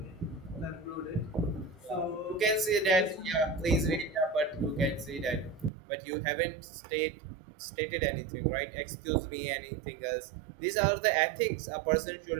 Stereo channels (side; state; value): left; drops out; at 5.7 s